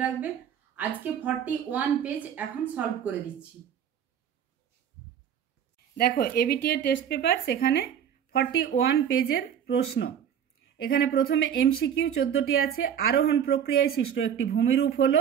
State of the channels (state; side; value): quieter; left; 8.8 dB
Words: রাখবে। আজকে 41 পেজ এখন সলভ করে দিচ্ছি। দেখো এবিটিএ টেস্ট পেপার, সেখানে 41 পেজের প্রশ্ন। এখানে প্রথমে এমসিকিউ 14টি আছে। আরোহণ প্রক্রিয়ায় সৃষ্ট একটি ভূমিরূপ হলো